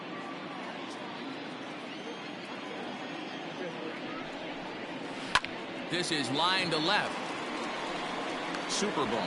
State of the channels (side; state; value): both; identical; correlation 1.00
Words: This is line to left.